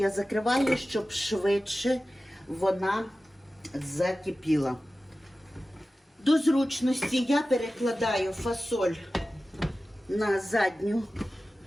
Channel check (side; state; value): both; normal; correlation 0.95